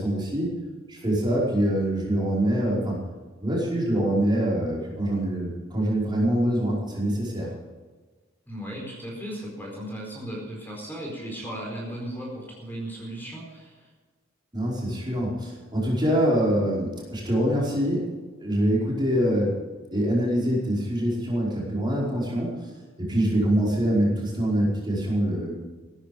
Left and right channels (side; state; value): both; normal; correlation 0.75